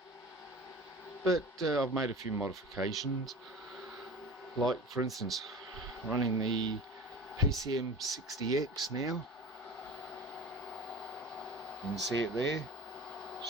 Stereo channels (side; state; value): both; normal; correlation 0.37